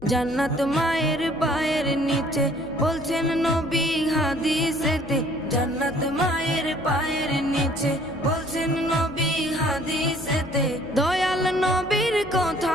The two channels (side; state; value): left; noise; hum, 20 dB below the sound